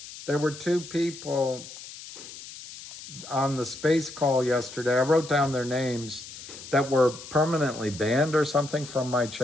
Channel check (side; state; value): left; noise; hiss, 14 dB below the sound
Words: on the space call yesterday. I wrote down their names that were permanently banned or something from my